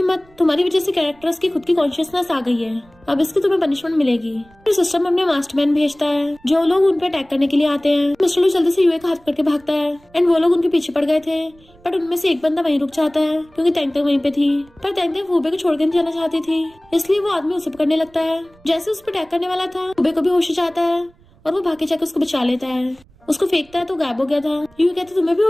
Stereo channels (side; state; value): right; noise; rumble, 29 dB below the sound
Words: तुम्हारी वजह से कैरेक्टर्स की खुद की कॉन्शियसनेस आ गई है, अब इसकी तुम्हें पनिशमेंट मिलेगी। फिर सिस्टम अपने मास्टरमैन भेजता है जो लोग उन पे अटैक करने के लिए आते हैं। मिस्टर लू जल्दी से यूए का हाथ पकड़ के भागता है एंड वो लोग उनके पीछे पड़ गए थे, बट उनमें से एक बंदा वहीं रुक जाता है क्योंकि तैंग तैंग वहीं पे थी। पर तैंग तैंग फूबे को छोड़ के नहीं जाना चाहती थी, इसलिए वो आदमी उसे पकड़ने लगता है। जैसे उस पर अटैक करने वाला था, फूबे को भी होश जाता है और वो भाग के जाकर उसको बचा लेता है। उसको फेंकता है तो गायब हो गया था। यूए कहते तुम्हें भी